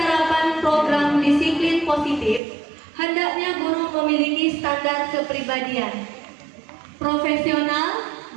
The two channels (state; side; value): drops out; left; at 2.4 s